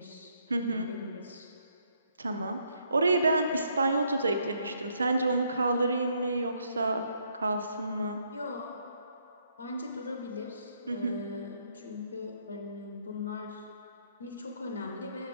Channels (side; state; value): both; inverted; correlation -0.71